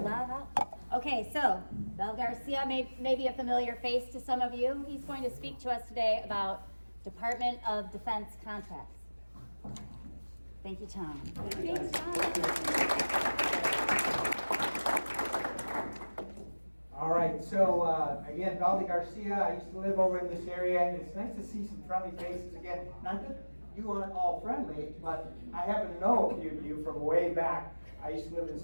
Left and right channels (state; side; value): inverted; both; correlation -1.00